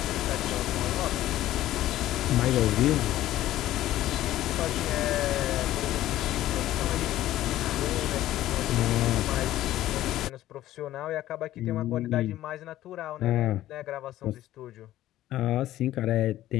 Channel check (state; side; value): quieter; right; 14.1 dB